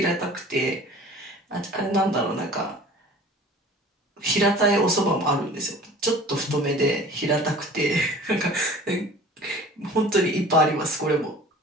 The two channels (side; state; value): both; normal; correlation 0.44